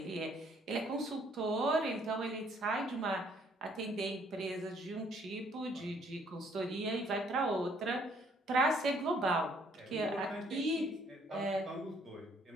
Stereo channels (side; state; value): both; normal; correlation 0.64